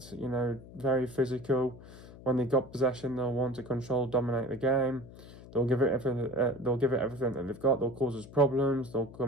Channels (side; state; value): left; noise; hum, 17 dB below the sound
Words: you know, very physical. When they've got possession, they'll want to control, dominate the game. They'll give it everything. They'll give it everything that they've got. They'll cause us problems. They'll